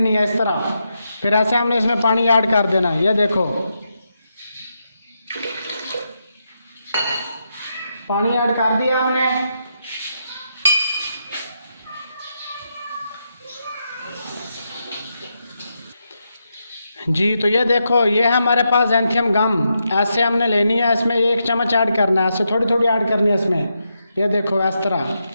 है इस तरह। फिर ऐसे हमने इसमें पानी ऐड कर देना है। ये देखो पानी ऐड कर दिया हमने। जी तो ये देखो, ये हमारे पास ज़ैंथियम गम ऐसे हमने लेनी है। इसमें 1 चम्मच ऐड करना है, ऐसे थोड़ी थोड़ी ऐड करनी है इसमें। ये देखो इस तरह।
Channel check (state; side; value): inverted; both; correlation -0.84